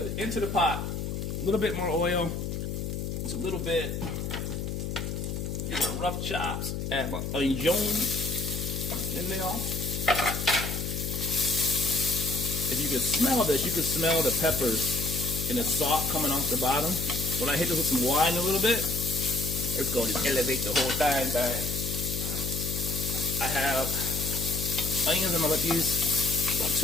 Into the pot. A little bit more oil. Just a little bit. These are rough chops. Add my onions in there. If you can smell this, you can smell the peppers and the salt coming off the bottom. When I hit this with some wine a little bit, it's going to just elevate the whole thing. I have onions. I'm going to let these about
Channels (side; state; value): left; noise; hum, 4 dB below the sound